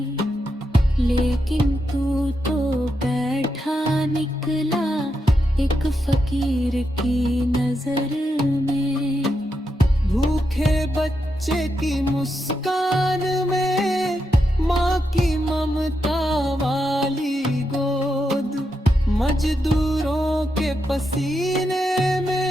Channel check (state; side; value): normal; both; correlation 0.84